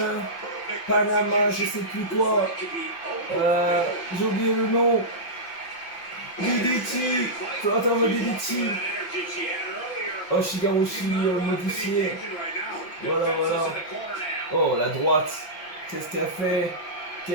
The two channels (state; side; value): late; right; 5.8 ms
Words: je sais plus quoi. J'ai oublié le nom. DDT. Flotter DDT. Oshigarushi modifié. Voilà, voilà. Oh, la droite. Qu'est-ce qu'elle fait?